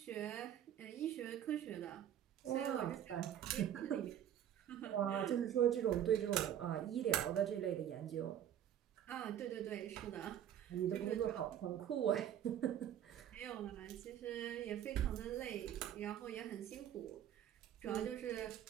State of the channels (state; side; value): quieter; left; 10.4 dB